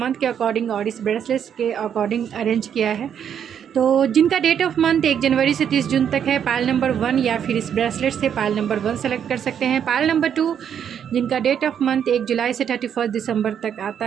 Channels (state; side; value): quieter; left; 8.6 dB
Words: के अकॉर्डिंग और इस ब्रेसलेट्स के अकॉर्डिंग अरेंज किया है। तो जिनका डेट ऑफ मंथ 1 जनवरी से 30 जून तक है, पायल नंबर 1 या फिर इस ब्रेसलेट से पायल नंबर 1 सेलेक्ट कर सकते हैं। पायल नंबर 2 जिनका डेट ऑफ मंथ 1 जुलाई से 31 दिसंबर तक